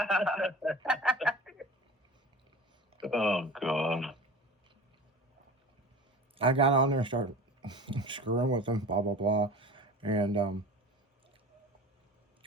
Oh, God. I got on there and started screwing with them, blah, blah, blah. And,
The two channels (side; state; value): both; normal; correlation 0.37